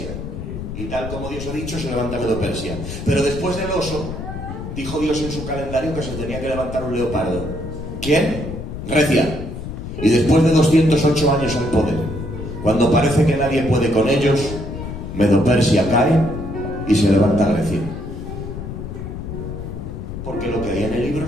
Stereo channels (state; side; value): noise; left; rumble, 8 dB below the sound